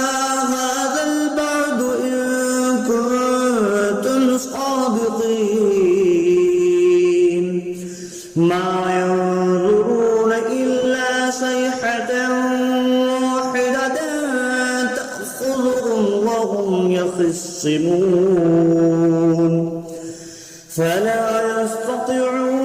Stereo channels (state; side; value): identical; both; correlation 1.00